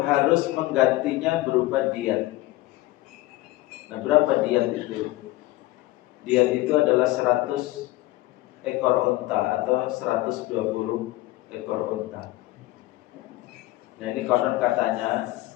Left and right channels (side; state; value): right; quieter; 18.3 dB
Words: harus menggantinya berupa diat. Nah, berapa diat itu? Diat itu adalah 100 ekor unta atau 120 ekor unta. Nah, ini konon katanya